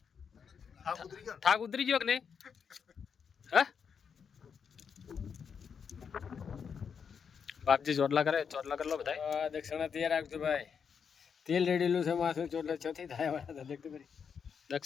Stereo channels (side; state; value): right; quieter; 6.7 dB